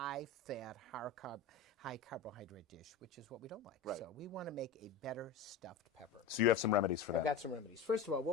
high-carbohydrate dish, which is what we don't like. Right. So we want to make a better stuffed pepper. So you have some remedies for that. I've got some remedies. First of all,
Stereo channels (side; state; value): right; quieter; 5.8 dB